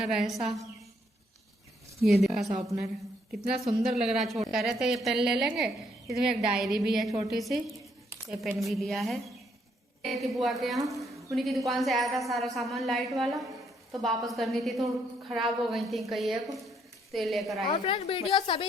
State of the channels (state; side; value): normal; both; correlation 0.71